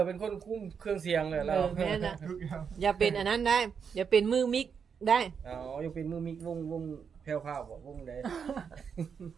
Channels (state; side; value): quieter; left; 6.6 dB